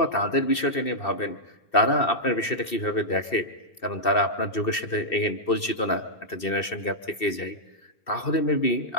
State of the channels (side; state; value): right; late; 2.7 ms